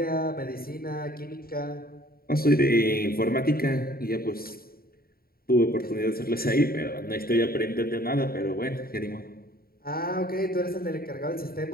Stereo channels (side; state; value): right; late; 0.43 ms